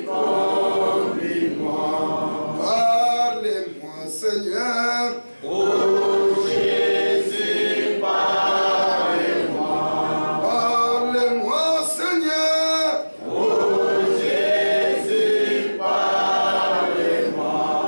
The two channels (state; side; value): inverted; both; correlation -1.00